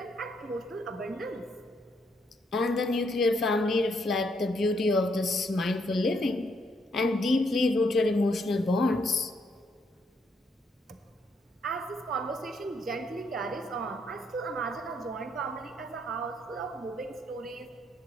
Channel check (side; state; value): both; normal; correlation 0.73